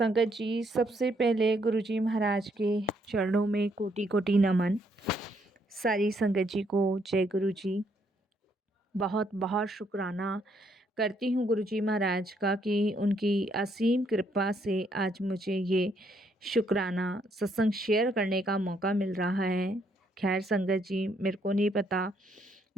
जी सबसे पहले गुरुजी महाराज के चरणों में कोटि कोटि नमन। सारी संगत जी को जय गुरु जी। बहुत बहुत शुक्राना करती हूँ गुरुजी महाराज का कि उनकी असीम कृपा से आज मुझे ये शुक्राना सत्संग शेयर करने का मौका मिल रहा है। खैर संगत जी, मेरे को नहीं पता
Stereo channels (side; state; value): both; normal; correlation 0.72